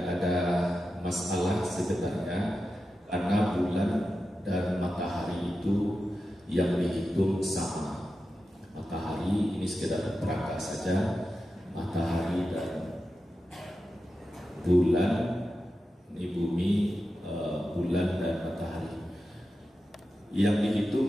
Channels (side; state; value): both; normal; correlation 0.91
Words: ada masalah sebenarnya, karena bulan dan matahari itu yang dihitung sama. Matahari ini sekedar perangkat saja, matahari dan bulan, ini bumi, bulan dan matahari. Yang